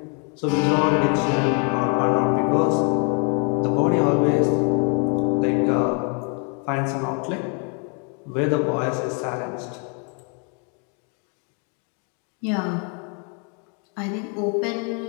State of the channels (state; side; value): quieter; right; 38.2 dB